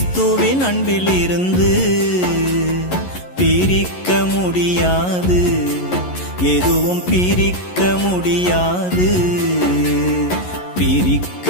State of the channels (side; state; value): right; late; 11 ms